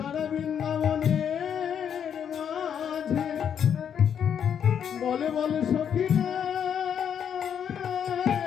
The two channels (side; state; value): right; quieter; 8.3 dB